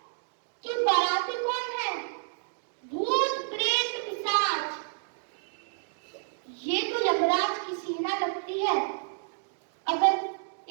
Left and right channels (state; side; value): silent; left; digital silence